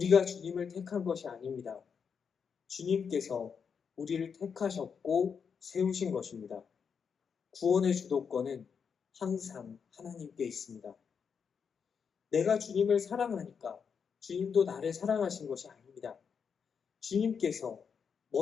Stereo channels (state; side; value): quieter; right; 6.5 dB